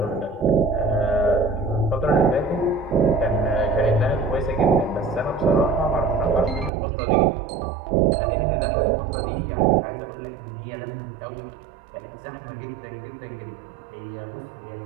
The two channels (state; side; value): drops out; left; at 6.7 s